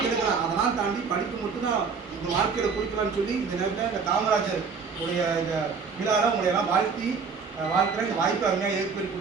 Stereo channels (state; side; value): quieter; left; 5.4 dB